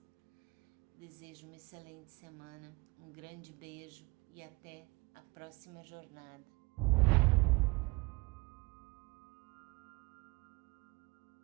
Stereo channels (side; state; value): left; quieter; 25.3 dB